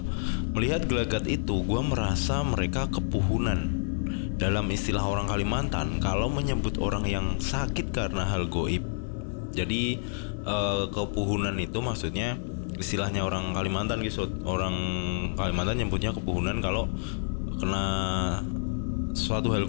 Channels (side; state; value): right; silent; digital silence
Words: Melihat gelagat itu, gua merasa mereka kepuhunan. Dalam istilah orang Kalimantan, kalau menyebut orang yang sakit karena hal goib. Jadi kepuhunan itu maksudnya istilahnya orang Kalimantan gitu. Orang Kalimantan nyebutnya kepuhunan kalau kena suatu hal